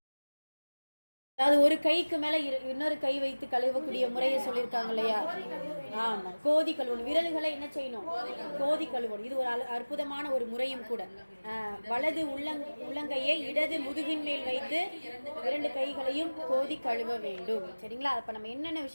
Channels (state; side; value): inverted; both; correlation -1.00